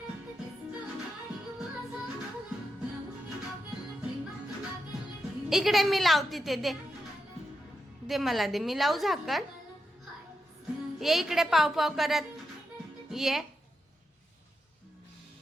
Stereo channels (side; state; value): both; normal; correlation 0.86